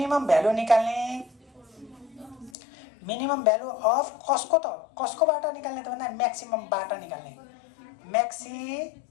भ्यालु निकाल्ने। मिनिमम भ्यालु अफ कसको? त कसकोबाट निकाल्ने त भन्दा म्याक्सिममबाट निकाल्ने। म्याक्सिमम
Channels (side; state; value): right; drops out; at 2.5 s